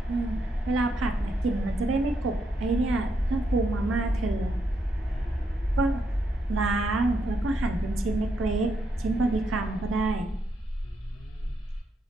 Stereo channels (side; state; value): both; normal; correlation 0.79